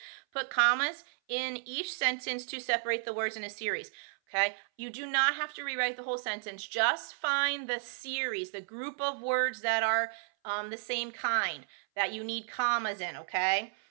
put commas in each sentence to separate the words in a series, okay? You do not have to rewrite the whole sentence. Just find the series, the group of words that are the same kind that you need commas in, okay?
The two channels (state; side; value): silent; left; 56 dB below the other